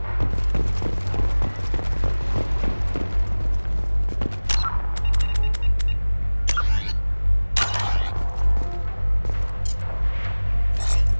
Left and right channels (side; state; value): both; inverted; correlation -1.00